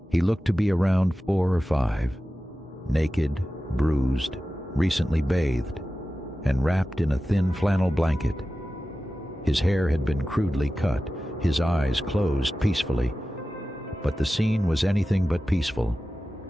He looked to be around 4 or 5, naked, bruised, recently bathed, and wrapped in a thin flannel blanket. His hair had been crudely cut, his eyes closed peacefully, but the scene was anything but peaceful.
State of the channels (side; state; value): both; normal; correlation 0.94